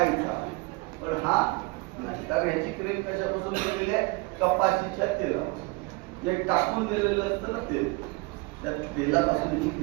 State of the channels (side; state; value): left; quieter; 25.8 dB